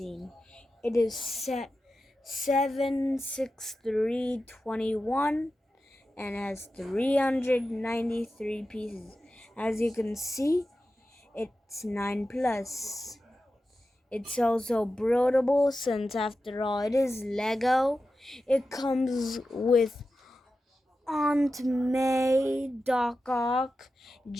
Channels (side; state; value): both; normal; correlation 0.92